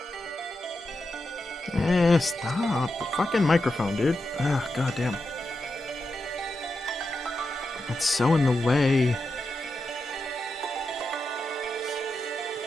Stop. The fucking microphone, dude. Ah, goddamn. It's so in the way.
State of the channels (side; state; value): both; normal; correlation 0.88